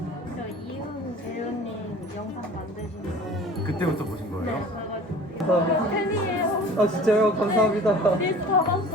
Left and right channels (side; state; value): both; normal; correlation 0.44